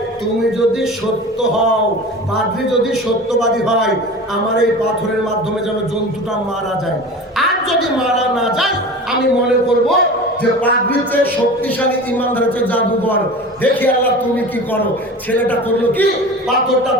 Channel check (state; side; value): normal; both; correlation 0.35